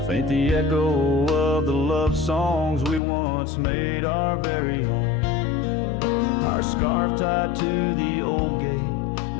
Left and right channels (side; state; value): right; drops out; at 3.0 s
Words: faint the echo of the love songs we once made our very own. Our scarf tied to the old gate,